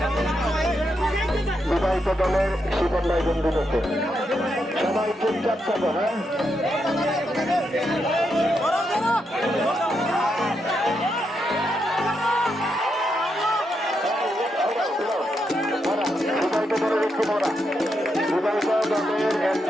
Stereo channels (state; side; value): normal; both; correlation 0.82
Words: বিবাহিত দলের শিবন ভাই বন্ধু করতে সবাই চুপচাপ থাকো। হ্যাঁ, বিবাহিত দলের একটু মরা, বিবাহিত দলের